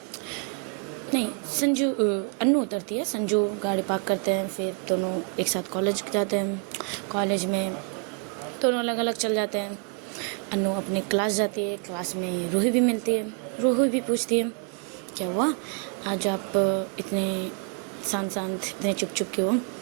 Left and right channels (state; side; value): quieter; left; 35.6 dB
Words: नहीं, अनु उतरती है, संजू गाड़ी पार्क करते हैं, फिर दोनों एक साथ कॉलेज जाते हैं। कॉलेज में दोनों अलग अलग चल जाते हैं। अनु अपनी क्लास जाती है, क्लास में रूही भी मिलती है। रूही भी पूछती है क्या हुआ आज आप इतने शांत इतने चुप क्यों हो?